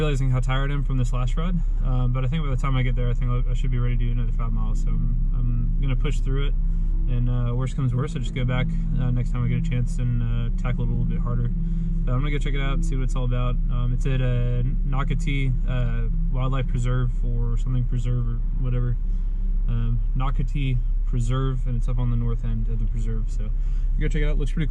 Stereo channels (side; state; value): both; identical; correlation 1.00